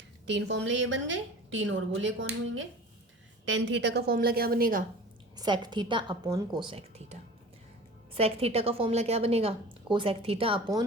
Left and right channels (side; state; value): both; normal; correlation 0.40